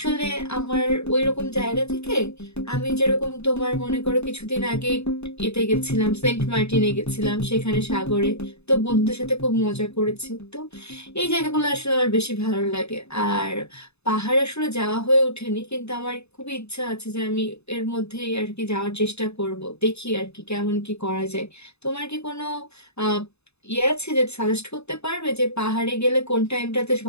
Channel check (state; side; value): late; right; 0.80 ms